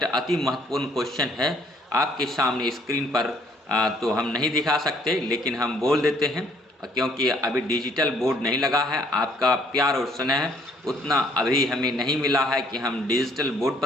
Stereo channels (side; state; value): both; normal; correlation 0.62